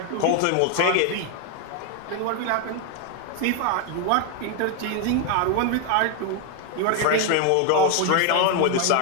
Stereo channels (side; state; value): both; different; correlation 0.01